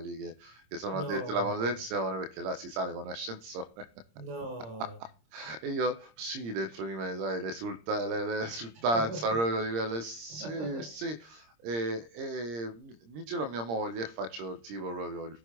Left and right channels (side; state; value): left; late; 26 ms